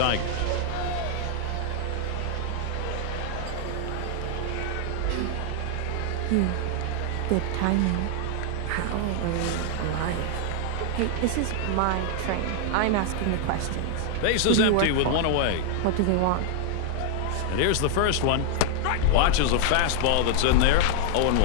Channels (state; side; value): different; both; correlation 0.00